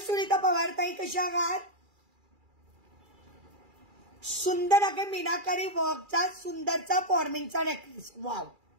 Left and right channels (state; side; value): late; left; 2.4 ms